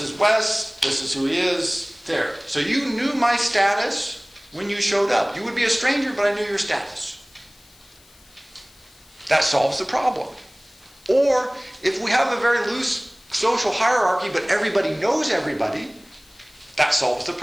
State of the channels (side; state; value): left; noise; hiss, 27 dB below the sound